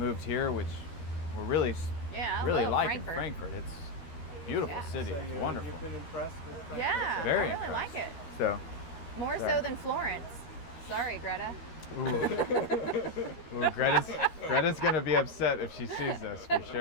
here, which we're really Yeah, I really love liking Frankfurt. It's a beautiful Yeah. city. So It's wonderful. You've been impressed with Frankfurt? Yeah, Very I really impressed. like it. So, More Yeah. so than Florence. Sorry, Greta. ooh, Greta's gonna be upset if she sees this for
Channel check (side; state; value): right; late; 13 ms